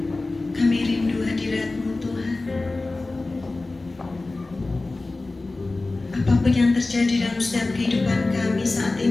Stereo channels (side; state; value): right; quieter; 3.2 dB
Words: Kami rindu hadirat-Mu Tuhan. Apapun yang terjadi dalam setiap kehidupan kami saat